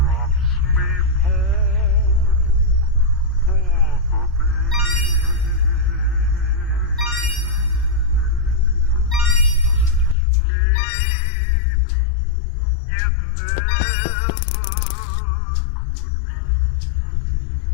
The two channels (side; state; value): right; drops out; at 10.2 s